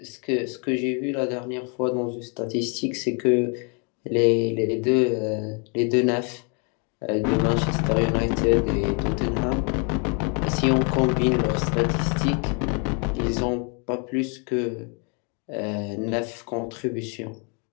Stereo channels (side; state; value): right; quieter; 36.5 dB